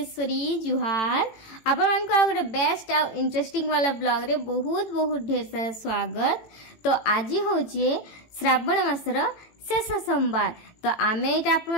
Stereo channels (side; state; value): right; late; 18 ms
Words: जुहार आपण को गोटे बेस्ट आ इंटरेस्टिंग वाला ब्लॉग रे बहुत बहुत ढेर सारा स्वागत। तो आज हूँ श्रावण मासर शेष सोमवार। तो आमे